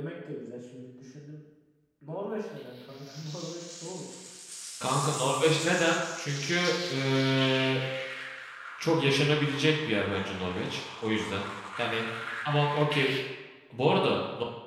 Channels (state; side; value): identical; both; correlation 1.00